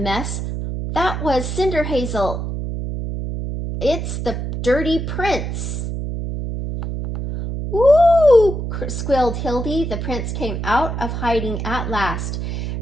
That was CinderHazel. It's the dirty prince. Ooh, squealed Hildy. The prince came out of hiding at last.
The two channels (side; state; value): right; noise; hum, 4 dB below the sound